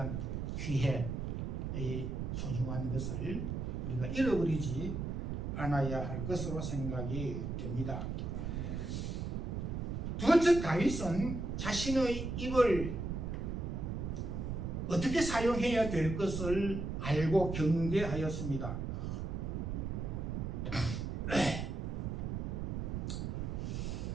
기회의 소중한 것을 우리가 잃어버리지 않아야 할 것으로 생각이 됩니다. 두 번째, 다윗은 자신의 입을 어떻게 사용해야 될 것을 알고 경계하였습니다.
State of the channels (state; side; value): noise; right; rumble, 3 dB below the sound